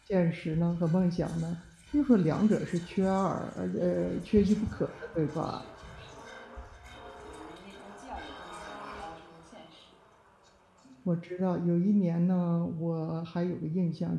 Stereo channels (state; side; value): identical; both; correlation 1.00